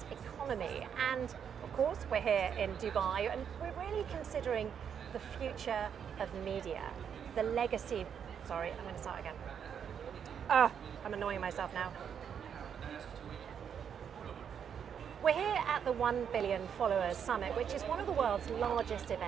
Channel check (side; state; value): left; quieter; 7.9 dB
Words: economy. And of course, we're here in Dubai and we're really considering the future of media, the legacy. Sorry, I'm going to start again. I'm annoying myself now. We're here at the 1 Billion Followers Summit, which is one of the world's largest